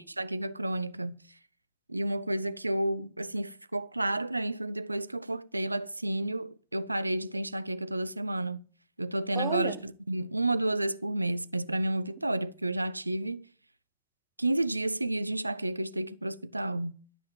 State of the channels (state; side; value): inverted; both; correlation -0.92